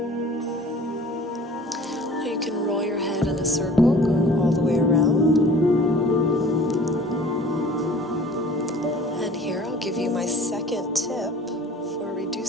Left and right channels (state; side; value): normal; both; correlation 0.47